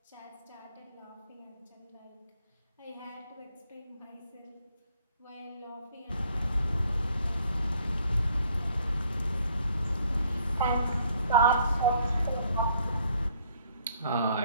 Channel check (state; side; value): inverted; both; correlation -0.64